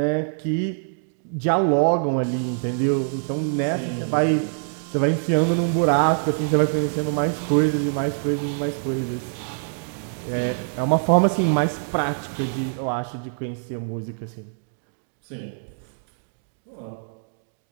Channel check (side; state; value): left; silent; digital silence